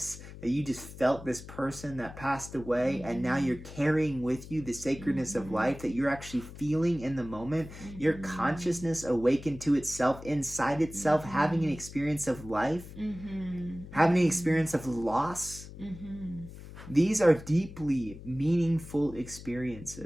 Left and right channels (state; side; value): noise; left; hum, 14 dB below the sound